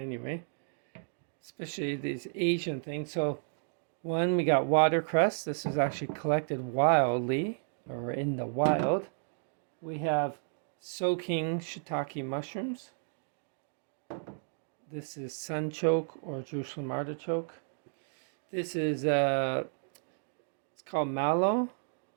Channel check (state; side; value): silent; left; digital silence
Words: especially these Asian things. So one, we got watercress. This is actually collected wildly or in the wild. We have soaking shiitake mushrooms. This is sunchoke or Jerusalem artichoke. This is it's called mallow,